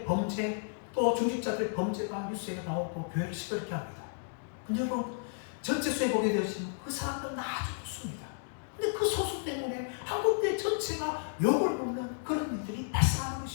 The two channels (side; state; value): right; silent; digital silence